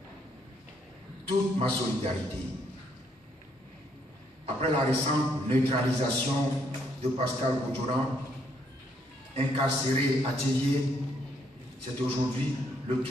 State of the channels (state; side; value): normal; both; correlation 0.71